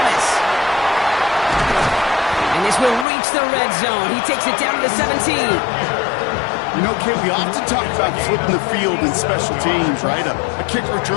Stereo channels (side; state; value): right; drops out; at 3.1 s